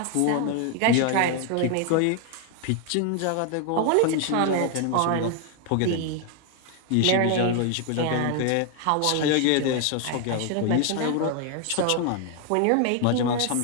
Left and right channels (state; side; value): different; both; correlation 0.01